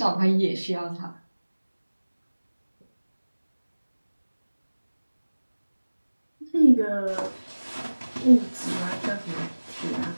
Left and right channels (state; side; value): inverted; both; correlation -1.00